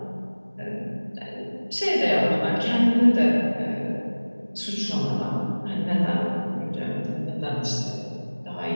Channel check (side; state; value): both; inverted; correlation -1.00